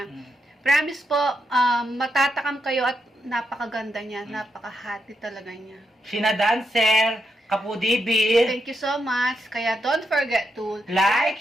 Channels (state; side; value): normal; both; correlation 0.82